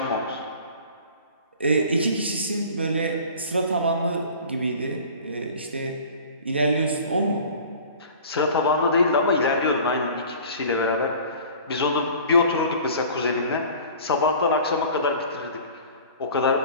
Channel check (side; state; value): both; inverted; correlation -0.44